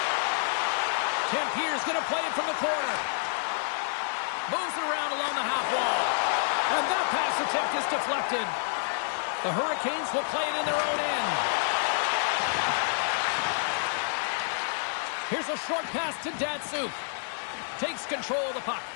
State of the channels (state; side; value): silent; right; 59 dB below the other